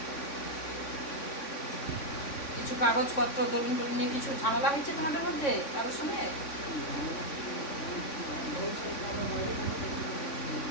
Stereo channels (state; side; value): late; right; 3.6 ms